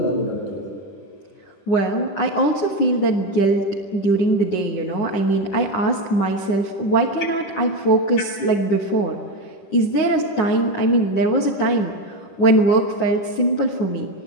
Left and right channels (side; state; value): right; late; 10 ms